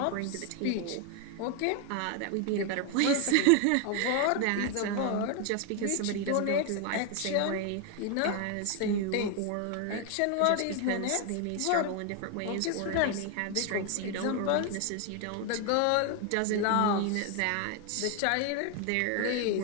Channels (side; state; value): both; different; correlation 0.01